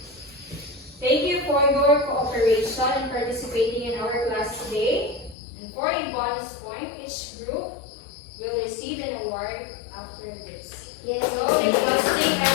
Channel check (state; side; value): drops out; right; at 5.4 s